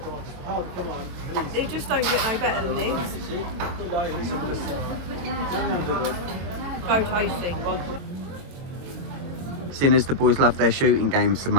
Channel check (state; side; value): late; left; 22 ms